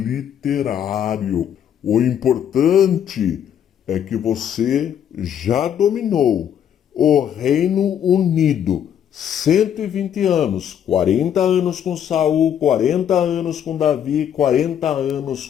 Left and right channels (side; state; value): right; quieter; 9.3 dB